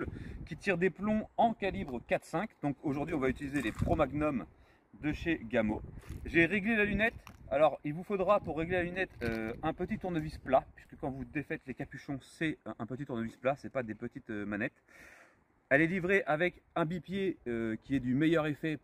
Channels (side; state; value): both; identical; correlation 1.00